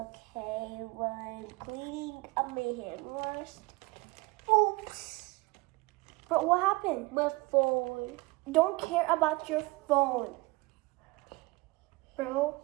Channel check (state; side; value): quieter; left; 23.2 dB